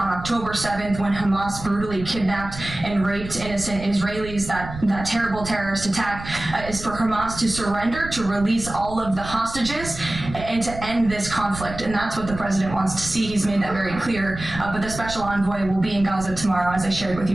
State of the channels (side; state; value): right; noise; rumble, 11 dB below the sound